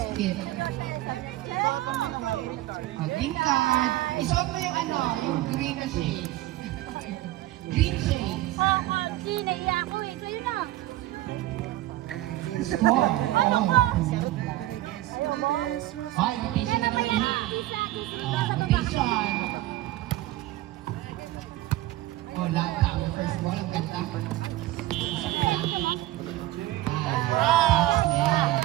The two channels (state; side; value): quieter; left; 16.1 dB